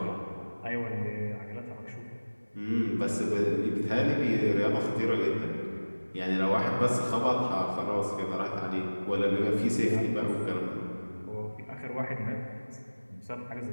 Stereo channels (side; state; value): both; inverted; correlation -1.00